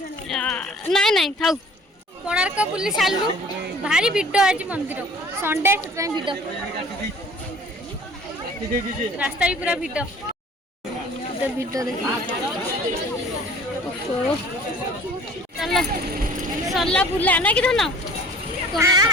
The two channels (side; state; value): both; normal; correlation 0.49